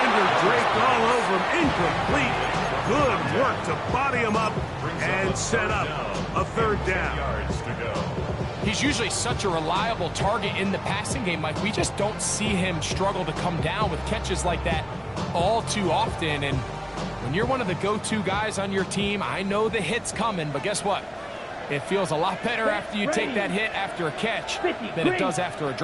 draped all over him. Incomplete. Good work to body him up and set up a third down. Yards to go. He's usually such a reliable target in the passing game, Mike. We just don't see him struggle to come down with catches like that all too often. And when you're one of the go-to guys on your team, I know the hit's coming, but guess what? It feels a lot better after you take that hit after a catch than it does after a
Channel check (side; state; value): both; identical; correlation 1.00